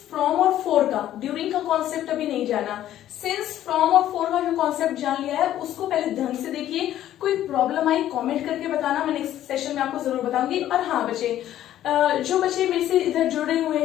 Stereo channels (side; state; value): right; quieter; 12.4 dB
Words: फ्रॉम और फॉर का, ड्यूरिंग का कॉन्सेप्ट अभी नहीं जाना, सिंस, फ्रॉम और फॉर का जो कॉन्सेप्ट जान लिया है, उसको पहले ढंग से देखिए। कोई प्रॉब्लम आई कमेंट करके बताना, मैं नेक्स्ट सेशन में आपको जरूर बताऊंगी। और हाँ बच्चे, जो बच्चे मेरे से इधर जुड़े हुए